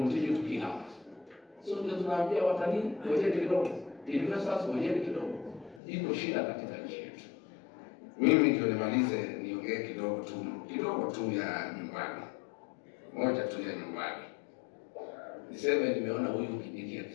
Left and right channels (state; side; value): drops out; right; at 5.8 s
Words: to kill others. So tunaambia watalii ngojeni kidogo, investors ngojeni kidogo. Iko shida katika nchi yetu. Mimi ndio nimalize niongee kidogo tu ya nyumbani. Moja tu ya nyumbani. Niseme nimeona huyu Kindiki